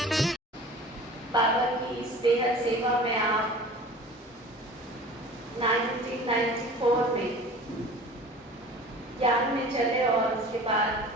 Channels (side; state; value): both; normal; correlation 0.41